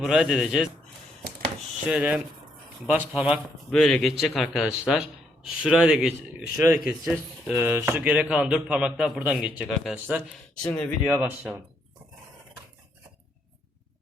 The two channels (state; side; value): normal; both; correlation 0.74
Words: buraya deleceğiz. Şöyle baş parmak böyle geçecek arkadaşlar. Şuraya da keseceğiz. Şu geri kalan 4 parmak da buradan geçecek arkadaşlar. Şimdi videoya başlayalım.